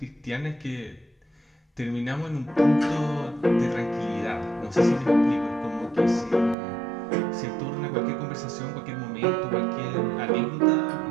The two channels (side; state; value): left; drops out; at 6.6 s